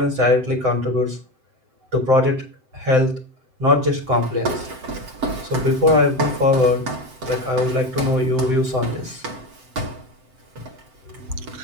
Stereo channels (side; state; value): left; late; 7.7 ms